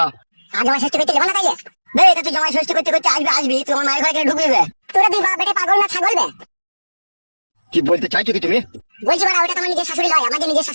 আর জমাই ষষ্ঠী করতে যাবো না তাইলে? বে এটা তুই জমাই ষষ্ঠী করতে করতে আসবি তুই আমার মায়ের ঘরে কেন ঢুকবি বে? তোরা দুই বাপ বেটে পাগল না ছাগল বে? কি বলতে চাইছো কি তুমি? বলছি বাড়া ওটা তোমার নিজের শাশুড়ি নয়, আমার যে নিজের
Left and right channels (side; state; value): both; inverted; correlation -1.00